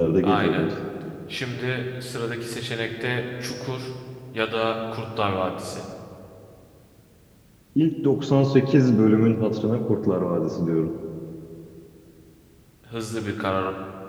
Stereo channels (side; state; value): both; identical; correlation 1.00